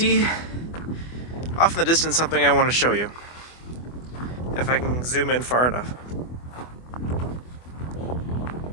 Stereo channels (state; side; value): late; right; 24 ms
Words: off in the distance something I want to show you. If I can zoom in far enough.